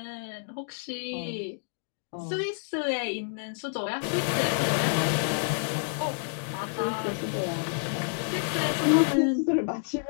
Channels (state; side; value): silent; right; digital silence